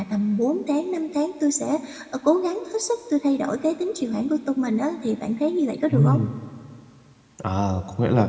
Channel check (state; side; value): identical; both; correlation 1.00